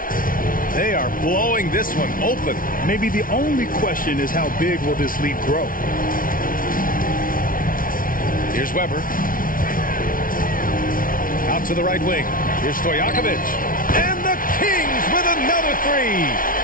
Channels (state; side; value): late; right; 0.40 ms